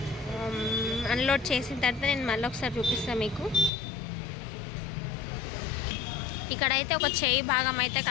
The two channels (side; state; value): right; drops out; at 3.7 s